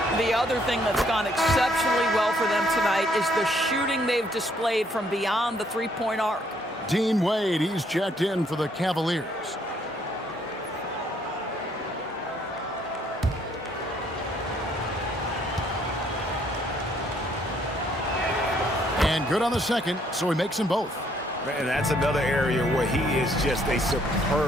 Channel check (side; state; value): both; normal; correlation 0.67